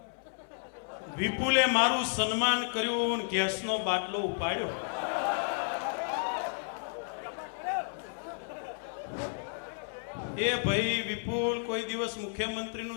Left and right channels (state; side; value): silent; right; digital silence